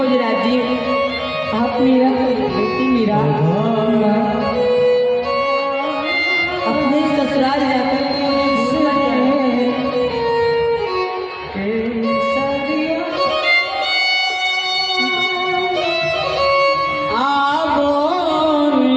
जी, आप मीरा बेटी मीरा अपने ससुराल जाकर के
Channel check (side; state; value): both; identical; correlation 1.00